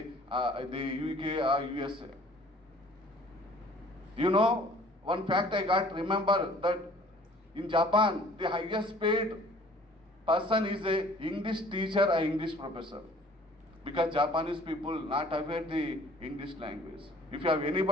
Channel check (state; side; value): normal; both; correlation 0.53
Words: UK or USA. You know, one fact I got, remember that in Japan, the highest paid person is a English teacher or English professor, because Japanese people not aware the English language. If you have